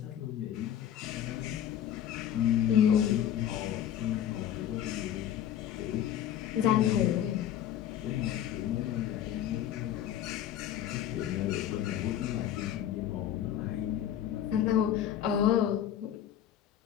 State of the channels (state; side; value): quieter; right; 10.6 dB